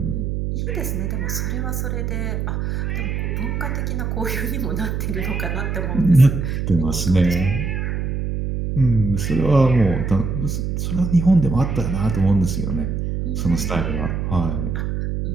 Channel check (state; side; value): noise; right; hum, 2 dB below the sound